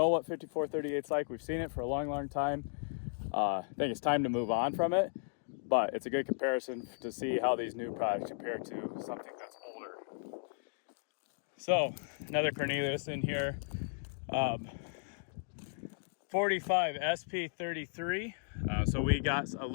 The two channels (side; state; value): right; silent; digital silence